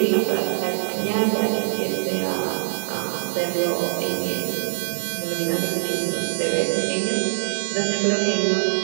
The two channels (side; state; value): left; silent; digital silence